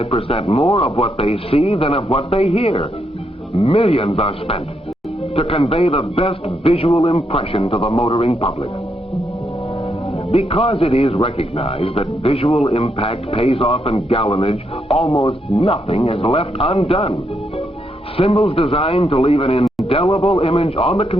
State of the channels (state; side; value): normal; both; correlation 0.79